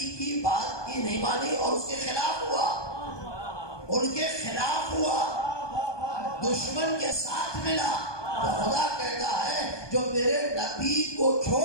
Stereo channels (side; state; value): right; late; 1.2 ms